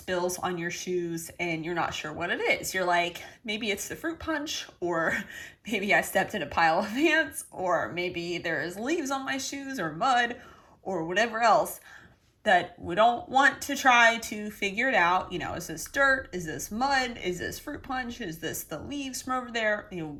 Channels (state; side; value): identical; both; correlation 1.00